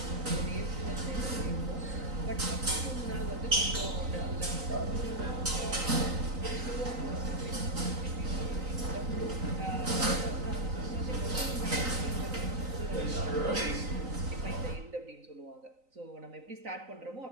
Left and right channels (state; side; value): late; left; 3.9 ms